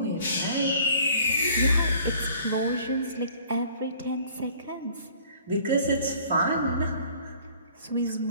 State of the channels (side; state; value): both; inverted; correlation -0.54